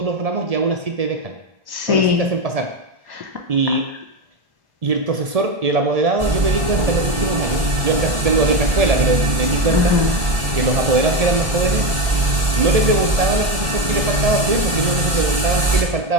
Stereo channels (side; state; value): left; late; 1.4 ms